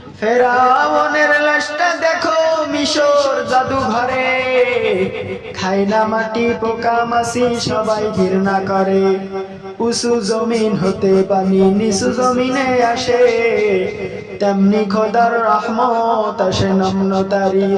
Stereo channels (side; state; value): both; identical; correlation 1.00